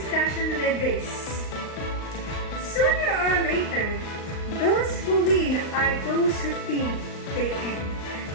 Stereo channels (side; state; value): right; late; 38 ms